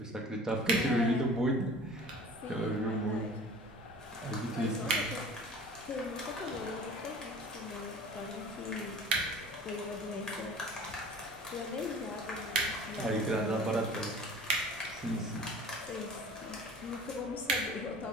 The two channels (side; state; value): both; normal; correlation 0.43